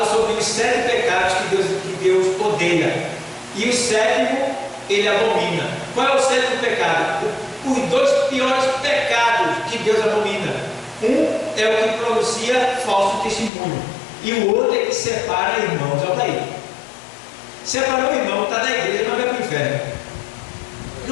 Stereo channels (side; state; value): right; drops out; at 13.5 s